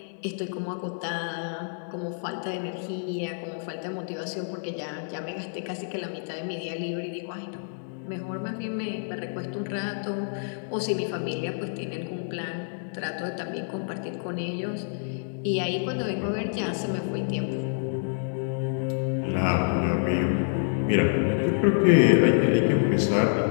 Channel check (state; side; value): silent; right; 60 dB below the other